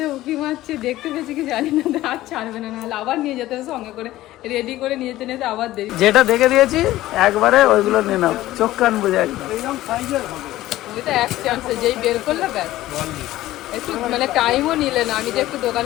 উঁকি মারছে, দেখতে পেয়েছি কি জানি না, আর ছাড়বে না, নাহলে আবার নিয়ে যেতে হবে সঙ্গে করে, রেডি করে নিয়ে যেতে আবার দেরি। যেটা দেখে দিয়েছি একবারে ওইগুলো নিয়ে নাও, চোখ কান বুঝে একদম। ওইটা এক চান্সে যেই বের করলে ব্যাস, একটু মানে টাইমও নিলে না। আমি যে একটু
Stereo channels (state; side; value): quieter; right; 15.7 dB